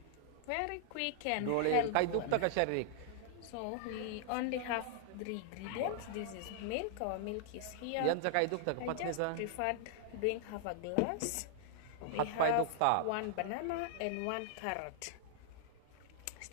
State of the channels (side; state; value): both; different; correlation -0.01